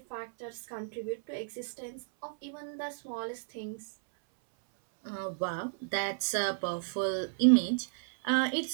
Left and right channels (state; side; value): silent; left; 56 dB below the other